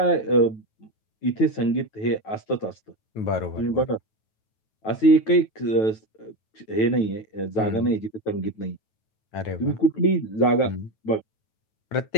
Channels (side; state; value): right; late; 9.2 ms